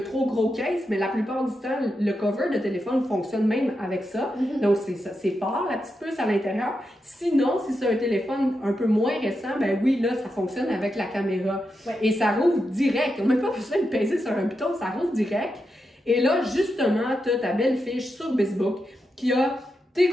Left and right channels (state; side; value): normal; both; correlation 0.87